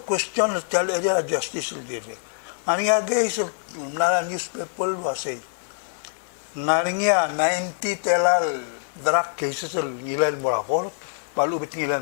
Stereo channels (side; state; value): right; silent; digital silence